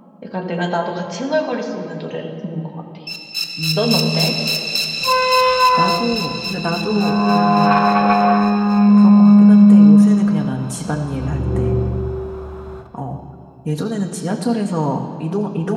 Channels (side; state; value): both; identical; correlation 1.00